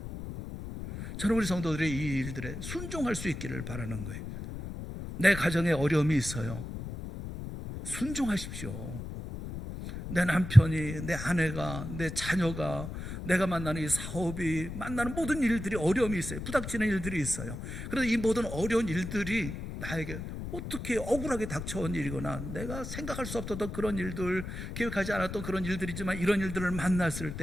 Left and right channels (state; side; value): noise; left; rumble, 7 dB below the sound